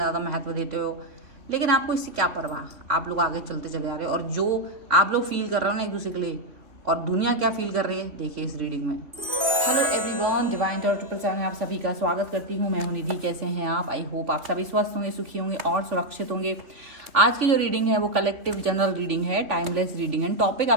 महत्व देते हो। लेकिन आपको इससे क्या परवाह, आप लोग आगे चलते चले आ रहे हो और जो आप लोग फील कर रहे हो ना एक दूसरे के लिए, और दुनिया क्या फील कर रही है देखिए इस रीडिंग में। Hello everyone, divine tarot triple seven में आप सभी का स्वागत करती हूँ। मैं हूँ निधि। कैसे हैं आप? आई होप आप सभी स्वस्थ होंगे, सुखी होंगे और सुरक्षित होंगे। आज की जो रीडिंग है वो कलेक्टिव जनरल रीडिंग है, टाइमलेस रीडिंग है। टॉपिक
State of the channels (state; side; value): late; left; 3.2 ms